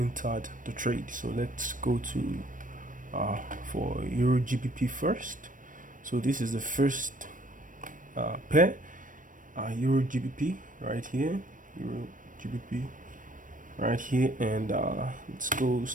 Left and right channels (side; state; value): left; late; 0.38 ms